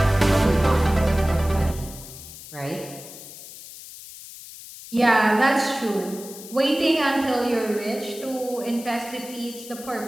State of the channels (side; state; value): left; noise; hiss, 15 dB below the sound